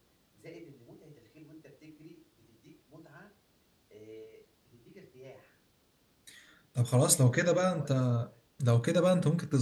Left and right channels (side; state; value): both; identical; correlation 1.00